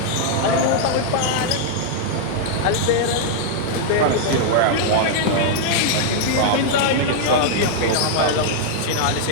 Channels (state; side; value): different; both; correlation -0.01